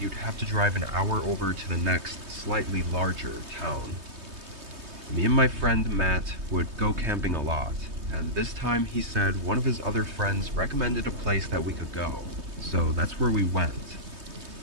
you'd have to drive an hour over to the next, slightly larger town. Me and my friend Matt would go camping a lot, and this time he said one of his other friends recommended a place that we could go. So that's where we went.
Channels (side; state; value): left; late; 3.2 ms